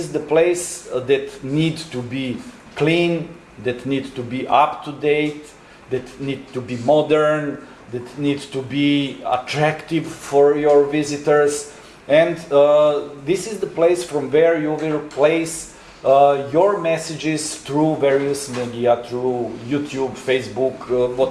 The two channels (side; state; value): both; identical; correlation 1.00